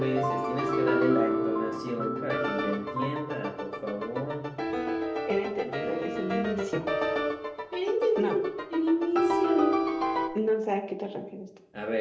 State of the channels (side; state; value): both; identical; correlation 1.00